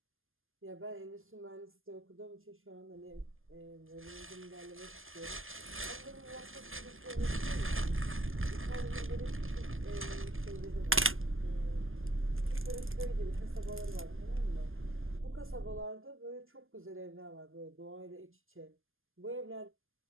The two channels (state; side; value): late; left; 0.59 ms